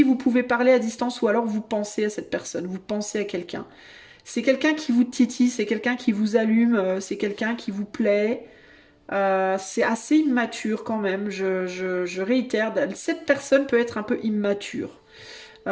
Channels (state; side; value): identical; both; correlation 1.00